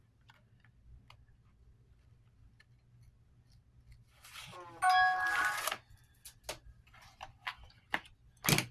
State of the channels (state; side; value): identical; both; correlation 1.00